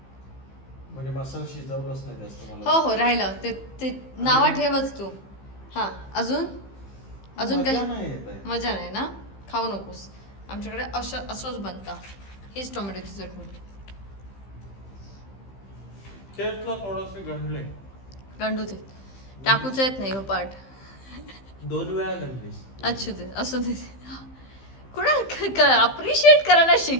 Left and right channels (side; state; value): right; late; 15 ms